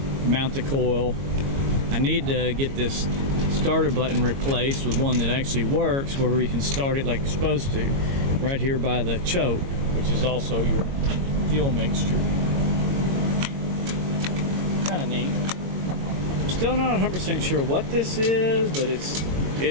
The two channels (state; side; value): late; left; 22 ms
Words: Mount the coil. I need to get this starter button replaced with one that actually works, where we can start it like it's supposed to, right here by the choke, which is also your fuel mixture. Kind of neat. I'm still not 100% sure what this is, but